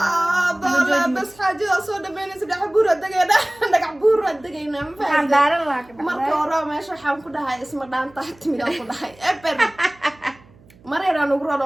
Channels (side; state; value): right; noise; hum, 27 dB below the sound